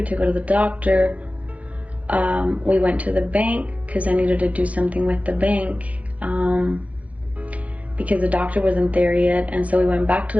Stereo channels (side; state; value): left; late; 0.067 ms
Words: to go to the doctor. We went to the bank because I needed to do something with the bank because the doctor wasn't there yet, and so we went back to